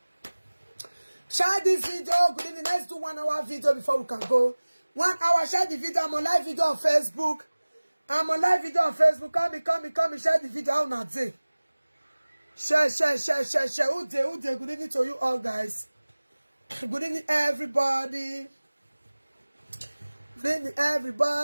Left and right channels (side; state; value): both; inverted; correlation -1.00